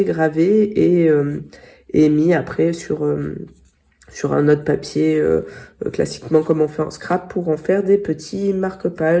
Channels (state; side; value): identical; both; correlation 1.00